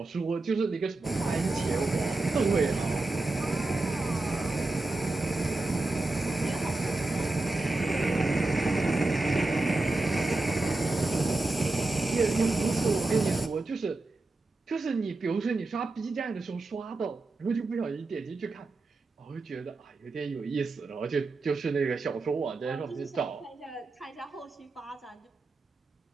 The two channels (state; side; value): quieter; left; 3.2 dB